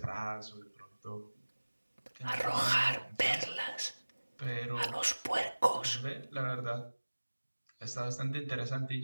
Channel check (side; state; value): both; inverted; correlation -1.00